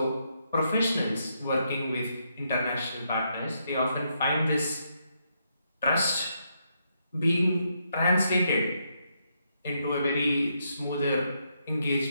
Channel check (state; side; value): inverted; both; correlation -0.78